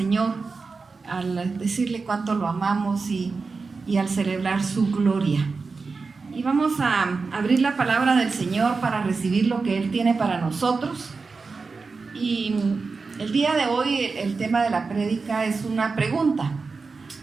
al decirle cuánto lo amamos y al celebrar su gloria. Y vamos a abrir la palabra del Señor para recibir lo que Él tiene para nosotros. Y el día de hoy el tema de la prédica es una pregunta.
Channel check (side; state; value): left; quieter; 4.4 dB